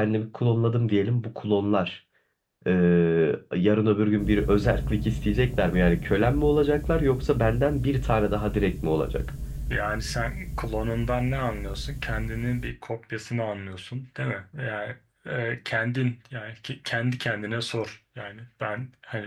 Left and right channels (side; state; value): both; identical; correlation 1.00